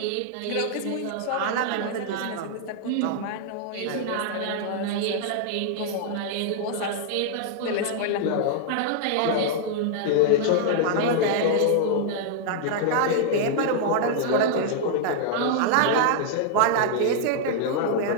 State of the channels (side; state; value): both; different; correlation -0.01